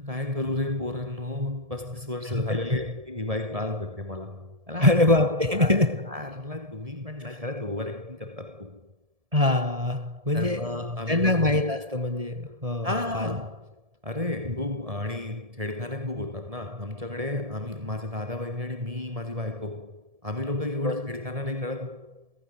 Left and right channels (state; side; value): late; left; 1.7 ms